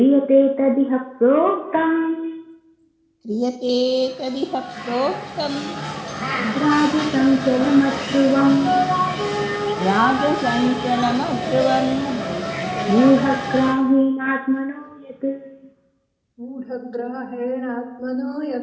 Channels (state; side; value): identical; both; correlation 1.00